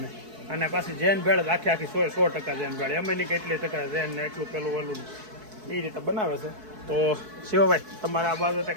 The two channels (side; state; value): left; late; 4.6 ms